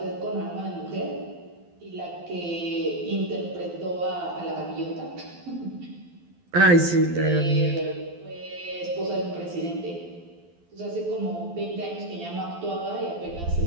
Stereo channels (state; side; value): late; left; 12 ms